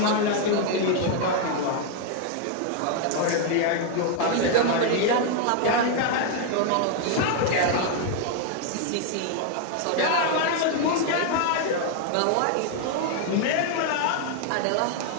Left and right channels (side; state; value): both; different; correlation 0.00